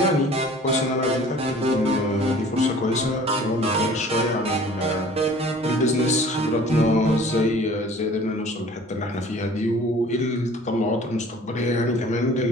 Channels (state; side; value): normal; both; correlation 0.48